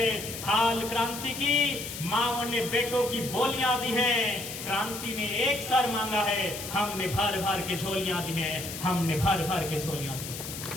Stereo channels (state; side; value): noise; left; hiss, 8 dB below the sound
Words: थाल क्रांति की, माओ ने बेटों की बोलियां दी हैं। क्रांति ने एक सर मांगा है, हमने भर भर के झोलियां दी हैं, हमने भर भर के झोलियां दी